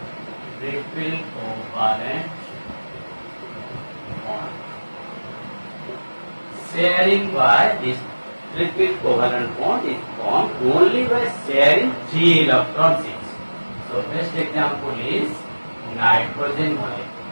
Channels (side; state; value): both; inverted; correlation -1.00